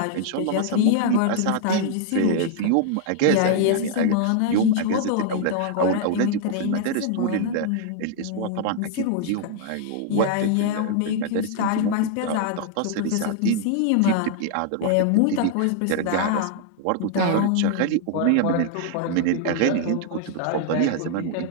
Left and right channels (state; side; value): different; both; correlation 0.00